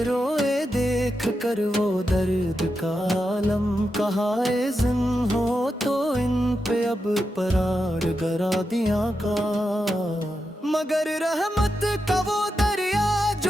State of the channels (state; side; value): normal; both; correlation 0.88